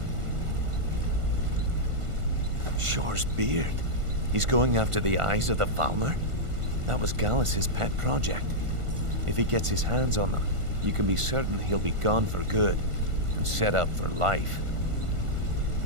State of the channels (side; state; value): left; late; 1.5 ms